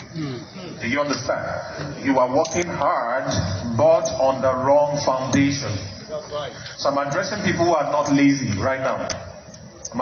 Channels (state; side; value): identical; both; correlation 1.00